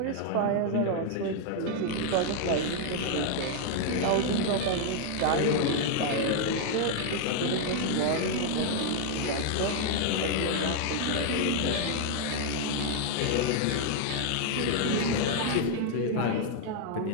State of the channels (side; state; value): both; different; correlation 0.00